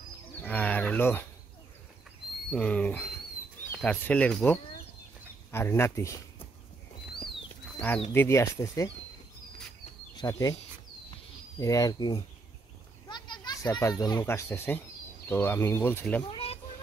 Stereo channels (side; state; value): left; quieter; 3.7 dB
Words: আর হলো তার ছেলের বউ আর নাতি, আর দিদি আসতেছে সাথে, এরা আর কি 4-5 জন লোক আসতেছে। তো আমি বলছিলাম,